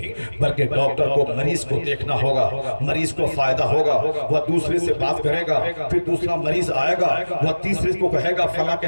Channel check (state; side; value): inverted; both; correlation -1.00